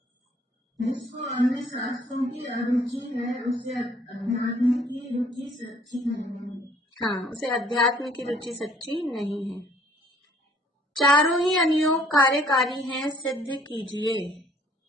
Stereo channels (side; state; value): both; normal; correlation 0.59